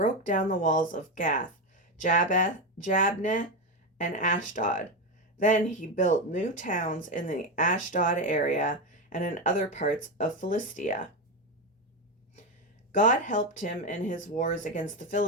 down the walls of Gath, Jabneh, and Ashdod. Then he built new towns in the Ashdod area and in other parts of Philistia. God helped him in his wars against the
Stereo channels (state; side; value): normal; both; correlation 0.12